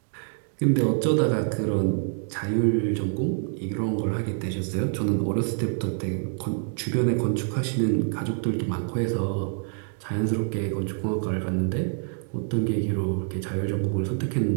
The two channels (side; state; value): left; silent; 61 dB below the other